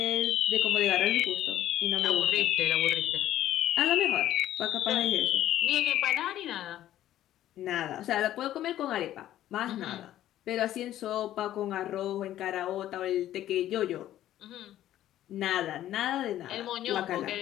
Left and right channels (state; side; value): quieter; right; 12.8 dB